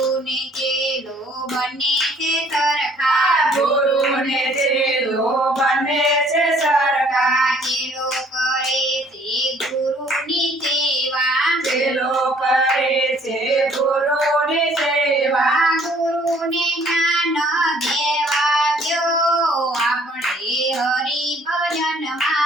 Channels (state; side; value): normal; both; correlation 0.59